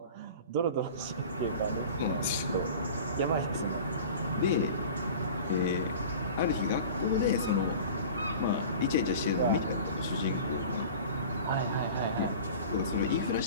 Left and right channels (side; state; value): both; inverted; correlation -0.39